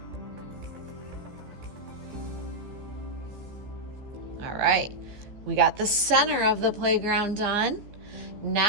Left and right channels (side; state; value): left; late; 15 ms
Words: All right, we got the center of the playground done.